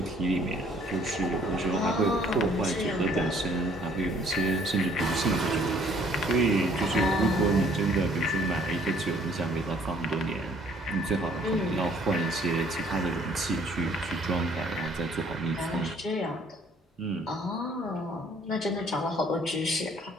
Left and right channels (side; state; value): both; normal; correlation 0.60